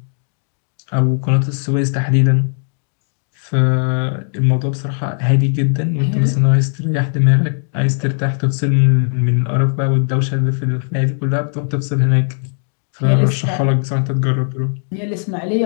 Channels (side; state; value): right; silent; 66 dB below the other